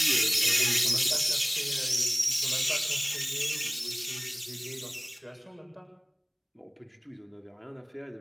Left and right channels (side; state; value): both; identical; correlation 1.00